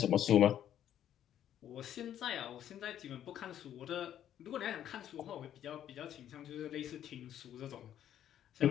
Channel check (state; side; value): quieter; right; 10.7 dB